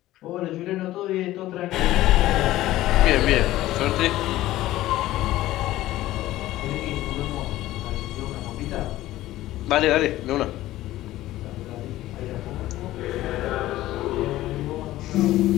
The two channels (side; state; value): right; quieter; 15.5 dB